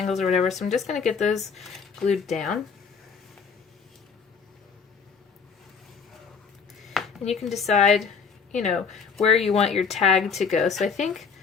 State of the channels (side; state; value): right; quieter; 5.7 dB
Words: or whatever, so I'm just going to get those glued down. And you can decide you know, where you want your tag to go. So I think